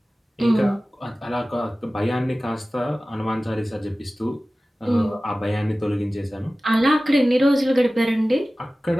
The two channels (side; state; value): both; normal; correlation 0.97